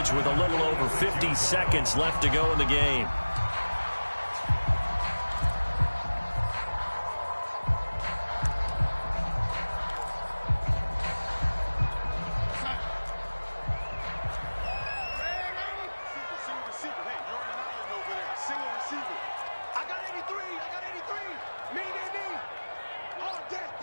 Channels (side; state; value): both; inverted; correlation -1.00